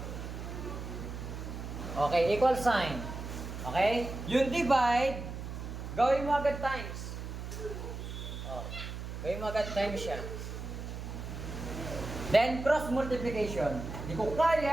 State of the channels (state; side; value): noise; right; hum, 7 dB below the sound